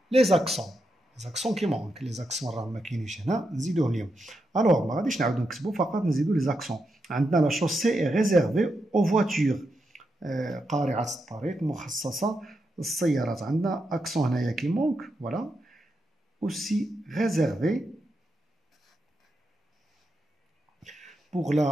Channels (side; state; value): both; normal; correlation 0.85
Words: les accents. Les accents qui manquent. Les accents راهم ما كاينينش هنا نزيدوهم ليهم. Alors, ما غاديش نعاودو نكتبو فقط نزيدو les accents. عندنا la chaussée est réservée aux voitures. قارعة الطريق مخصصة للسيارات. عندنا accent هنايا qui manque. Voilà. Aussi réservé. Pour